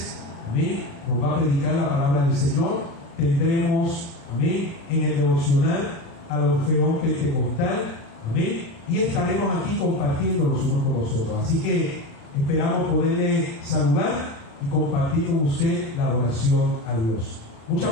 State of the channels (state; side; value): late; right; 36 ms